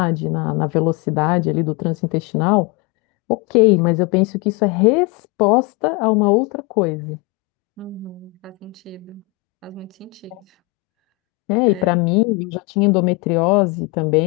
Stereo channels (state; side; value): quieter; right; 23.8 dB